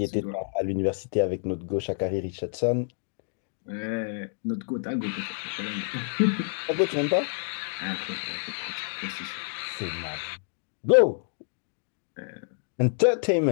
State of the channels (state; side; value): silent; right; digital silence